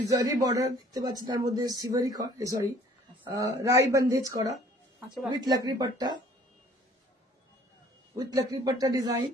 বর্ডার দেখতে পাচ্ছেন, তার মধ্যে সিভারি সরি রাই বন্ধেজ করা আচ্ছা উইথ লাকড়ি পাট্টা, উইথ লাকড়ি পাট্টা ডিজাইন।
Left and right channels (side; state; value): both; normal; correlation 0.55